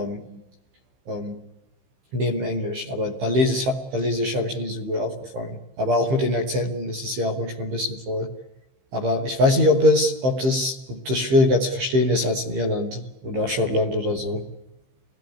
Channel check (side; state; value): left; late; 15 ms